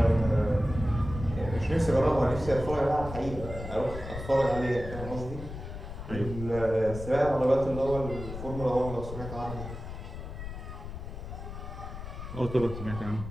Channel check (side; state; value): left; noise; rumble, 9 dB below the sound